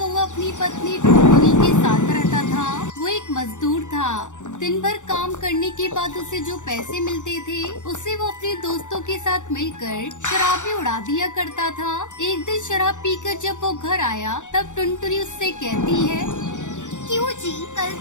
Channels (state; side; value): late; right; 0.85 ms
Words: अपनी पत्नी टुनटुनी के साथ रहता था। वो एक मजदूर था। दिन भर काम करने के बाद उसे जो पैसे मिलते थे उसे वो अपने दोस्तों के साथ मिलकर शराब में उड़ा दिया करता था। एक दिन शराब पीकर जब वो घर आया तब टुनटुनी उससे कहती है, क्यों जी, कल